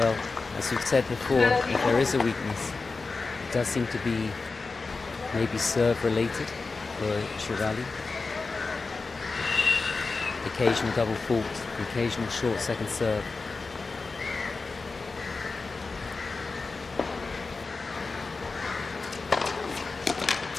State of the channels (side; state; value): right; quieter; 4.0 dB